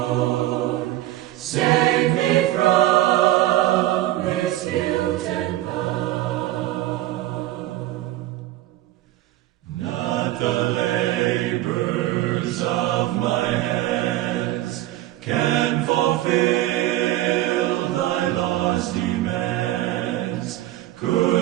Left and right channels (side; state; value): left; quieter; 15.3 dB